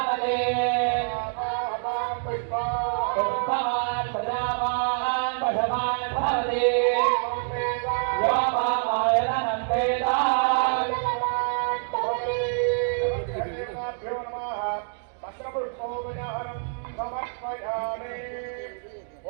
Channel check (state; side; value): silent; left; digital silence